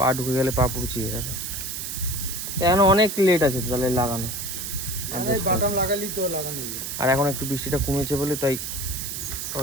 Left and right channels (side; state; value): right; noise; hiss, 5 dB below the sound